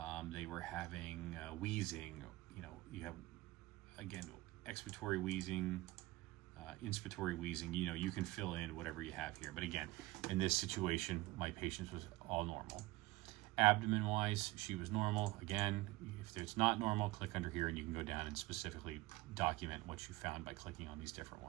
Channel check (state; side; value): quieter; left; 20.1 dB